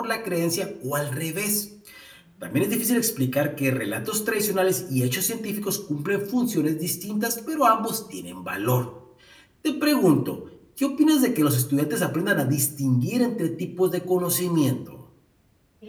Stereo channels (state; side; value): identical; both; correlation 1.00